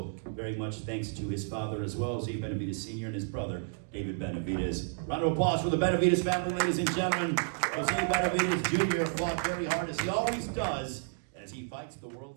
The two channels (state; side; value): silent; left; digital silence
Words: very much thanks to his father as well, Jose Benavidez Sr. and his brother, David Benavidez. Round of applause for the Benavidez family, ladies and gentlemen. Jose Benavidez Jr. fought very hard, as he always does, as he fights the